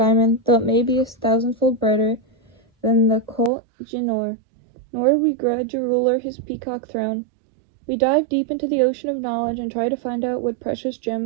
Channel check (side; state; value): left; drops out; at 3.5 s